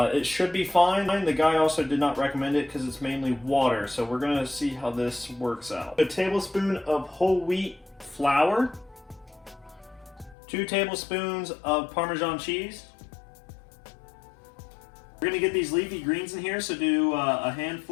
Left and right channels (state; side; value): drops out; right; at 10.4 s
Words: it should be fine. The guy also did not recommend it because it's mainly water. So we're gonna see how this works out. A tablespoon of whole wheat flour. 2 tablespoons of Parmesan cheese. We're gonna get these leafy greens in here, so do a